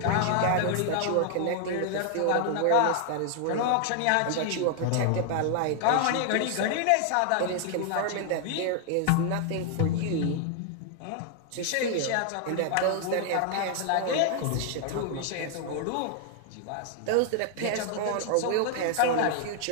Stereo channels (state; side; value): different; both; correlation 0.00